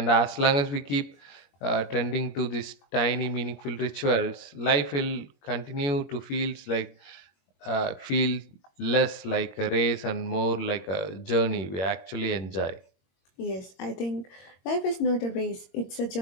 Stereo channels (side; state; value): right; late; 22 ms